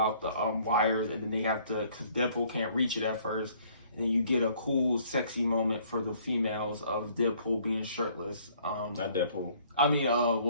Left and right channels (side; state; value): both; inverted; correlation -0.59